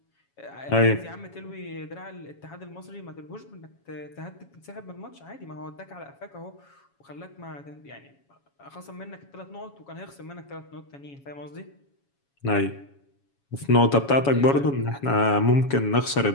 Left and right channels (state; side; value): late; right; 7.2 ms